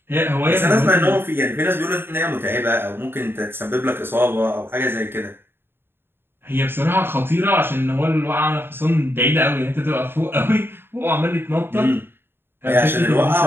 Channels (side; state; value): left; late; 0.11 ms